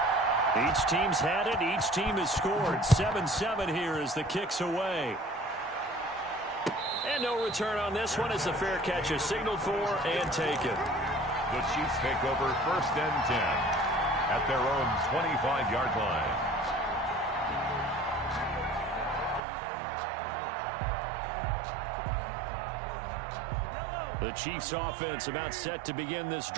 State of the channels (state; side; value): drops out; left; at 19.4 s